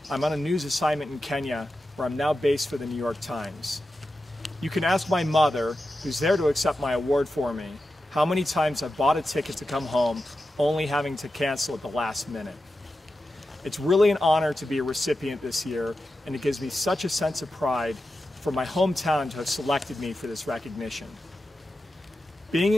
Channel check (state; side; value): normal; both; correlation 0.91